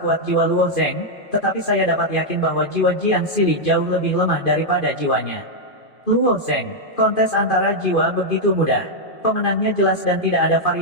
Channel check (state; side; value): late; right; 2.5 ms